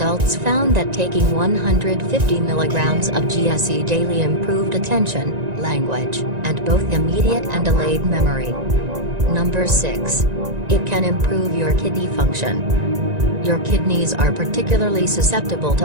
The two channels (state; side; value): late; left; 1.9 ms